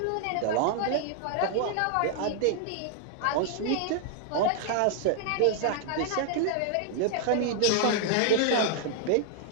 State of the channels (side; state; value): both; different; correlation -0.01